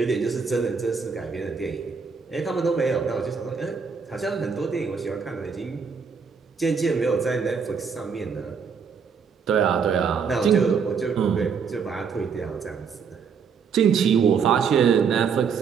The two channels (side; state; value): left; quieter; 6.0 dB